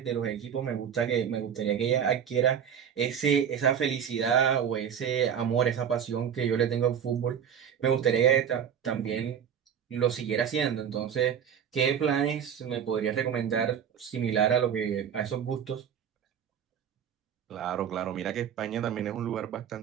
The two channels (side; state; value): left; quieter; 8.3 dB